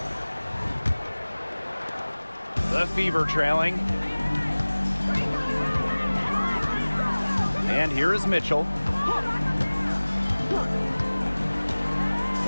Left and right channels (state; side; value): inverted; both; correlation -1.00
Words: The Fever trailing. And here is Mitchell.